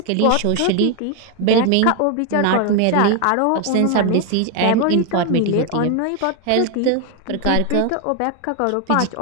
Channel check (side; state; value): both; different; correlation 0.01